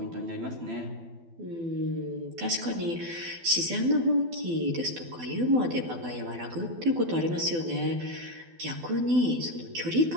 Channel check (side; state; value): left; late; 12 ms